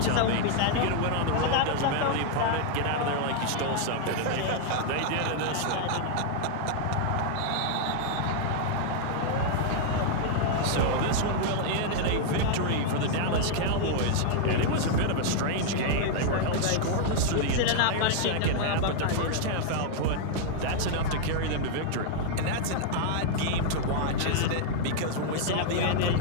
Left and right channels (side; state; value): both; different; correlation 0.00